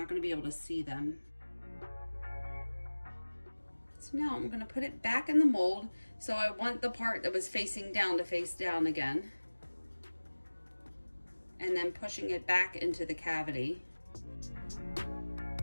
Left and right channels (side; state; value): both; inverted; correlation -1.00